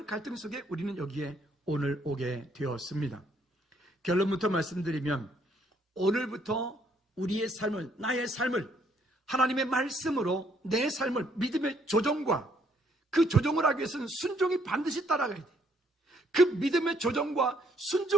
갈등 속에 우리는 여기에 오늘 오게 되었습니다. 결론부터 말씀드리면 오늘부터 우리의 삶을, 나의 삶을 하나님의 말씀으로 내 삶을 믿음의 조정과 그 조정을 하기 위해서는 순종이 반드시 따라가야 돼. 그 믿음의 조정과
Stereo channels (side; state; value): both; normal; correlation 0.68